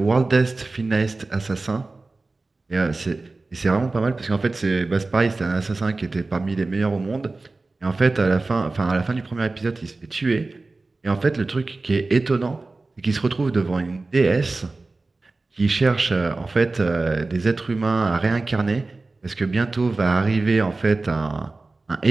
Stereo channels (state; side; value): quieter; left; 3.4 dB